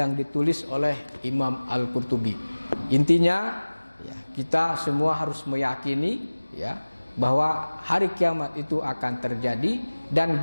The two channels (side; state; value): both; inverted; correlation -1.00